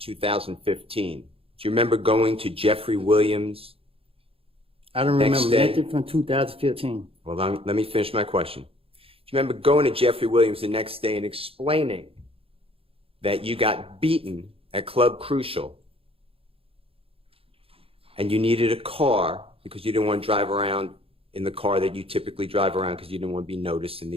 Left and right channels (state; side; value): late; left; 0.27 ms